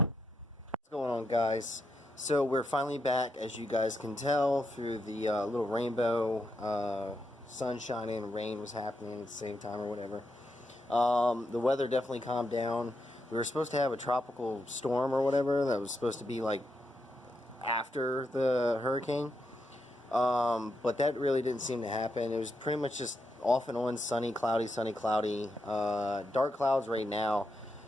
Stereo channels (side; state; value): both; normal; correlation 0.83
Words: going on, guys? So we're finally back, as you guys can tell, through the little rainbow. Sun shining, rain was happening at the same time or whatever. The weather definitely calmed down. We were supposed to have a tropical storm or whatever that was supposed to be like after the hurricane, but that really didn't seem to happen. It was pretty much just off and on, sunny, cloudy, dark clouds right now.